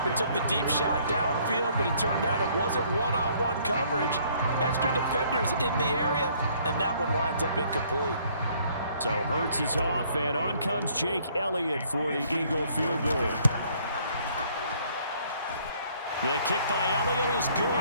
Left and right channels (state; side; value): inverted; both; correlation -0.62